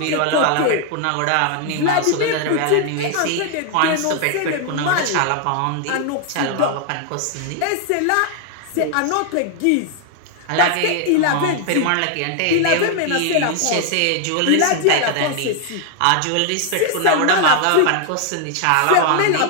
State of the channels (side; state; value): both; different; correlation 0.00